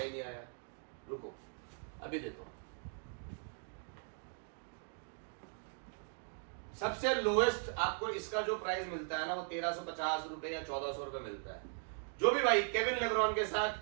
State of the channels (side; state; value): left; silent; 52 dB below the other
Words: नहीं आया, रुको अभी देता हूं। सबसे लोएस्ट आपको इसका जो प्राइस मिलता है ना, वो 1350 रुपए या 1400 रुपए मिलता है। जो भी भाई केविन लेब्रॉन के साथ